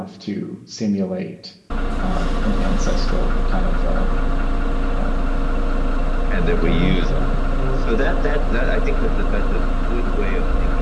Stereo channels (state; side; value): identical; both; correlation 1.00